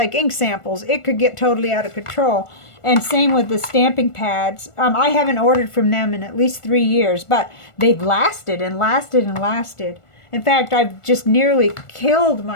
ink samples. It could get totally out of control. And same with the stamping pads. I haven't ordered from them in at least 3 years, but they've lasted and lasted and lasted. In fact, I've just nearly killed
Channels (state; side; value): late; right; 1.4 ms